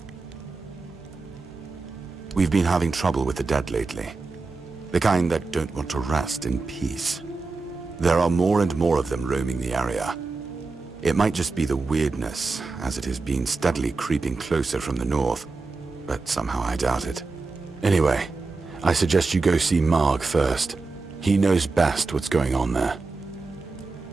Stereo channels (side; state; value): left; quieter; 3.9 dB